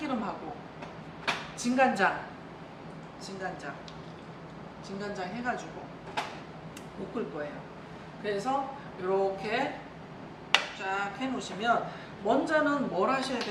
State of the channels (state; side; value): identical; both; correlation 1.00